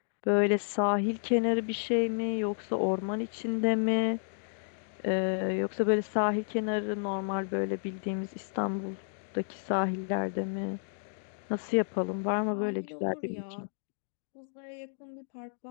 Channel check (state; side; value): silent; right; digital silence